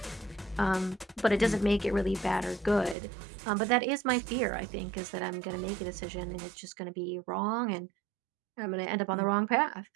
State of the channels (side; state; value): left; drops out; at 3.0 s